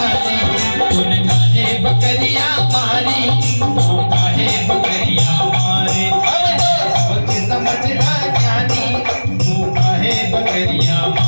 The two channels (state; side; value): inverted; both; correlation -1.00